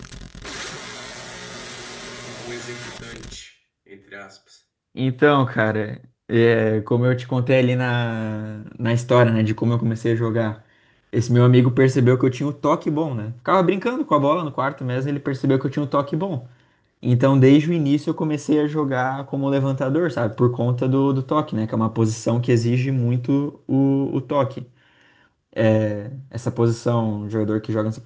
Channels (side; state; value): both; identical; correlation 1.00